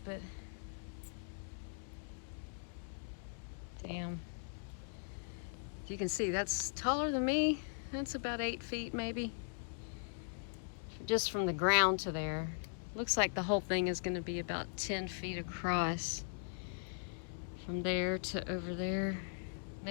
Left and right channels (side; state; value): right; silent; digital silence